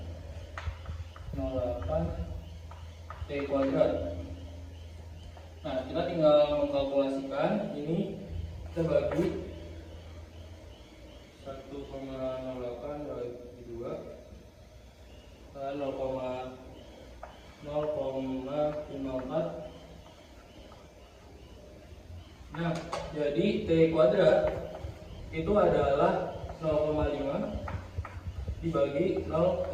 T kuadrat. Nah, kita tinggal mengkalkulasikan ini, kita bagi 1,08 bagi 2 0,54. Nah, jadi T kuadrat itu adalah 0,5 dibagi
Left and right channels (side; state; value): both; identical; correlation 1.00